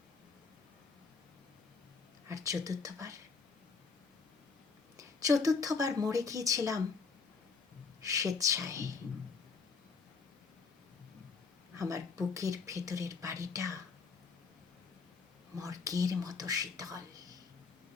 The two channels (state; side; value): quieter; right; 4.9 dB